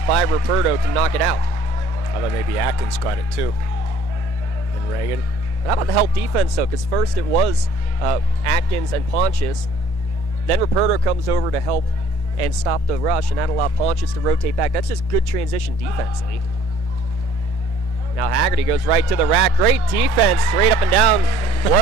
by Ruperto to knock it out. I thought maybe Atkins got it too. And Reagan. How about the help defense, though? Because first it was Atkins and Pontius. Then Ruperto comes over to help and stop the rush, and that allowed Pontius to rotate back. That's just good transition defensively. Now Haggerty goes right to the rack. Great defense, straight up and down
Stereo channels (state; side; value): late; right; 1.0 ms